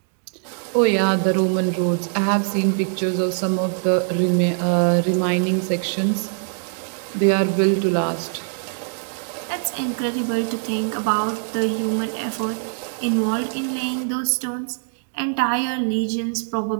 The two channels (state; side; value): silent; left; digital silence